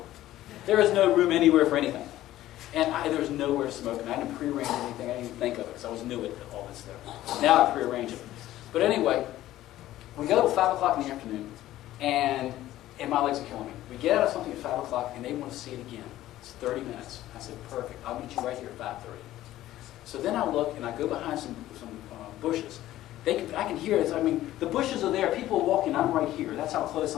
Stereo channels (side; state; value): right; quieter; 14.5 dB